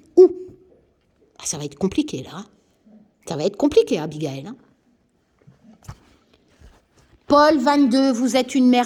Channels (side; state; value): both; identical; correlation 1.00